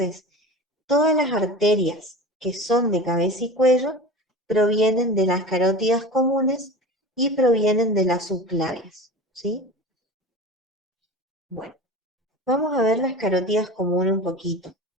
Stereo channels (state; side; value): normal; both; correlation 0.34